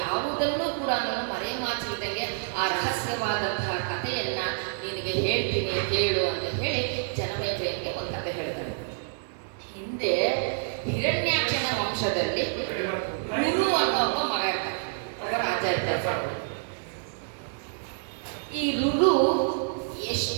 ಕೂಡ ಮರೆಮಾಚಿದಂಗೆ ಆ ರಹಸ್ಯವಾದಂತಹ ಕಥೆಯನ್ನ ನಿನಗೆ ಹೇಳ್ತೀನಿ ಕೇಳು ಅಂತ ಹೇಳಿ ಜನಮೇಜಯನಿಗೆ ಒಂದು ಕಥೆ ಹೇಳ್ತಾರೆ. ಹಿಂದೆ ಹಿರಣ್ಯಾಕ್ಷನ ವಂಶದಲ್ಲಿ ಗುರು ಅನ್ನೋ ಒಬ್ಬ ಮಗ ಇರ್ತಾರೆ, ಒಬ್ಬ ರಾಜ ಇರ್ತಾರೆ. ಈ ರುರು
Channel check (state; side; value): silent; left; digital silence